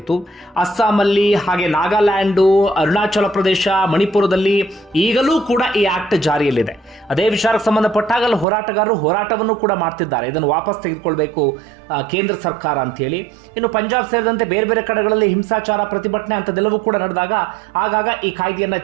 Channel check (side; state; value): left; drops out; at 8.5 s